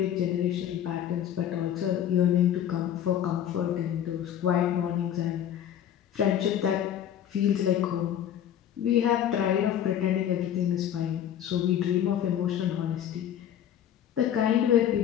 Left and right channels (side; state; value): right; quieter; 10.2 dB